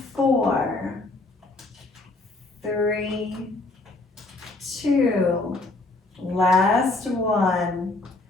4, 3, 2, last one.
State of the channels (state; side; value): quieter; right; 3.0 dB